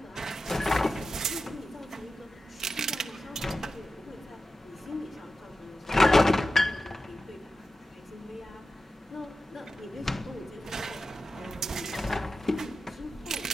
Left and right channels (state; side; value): normal; both; correlation 0.92